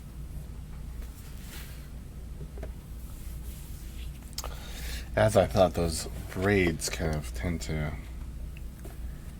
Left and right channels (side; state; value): both; identical; correlation 1.00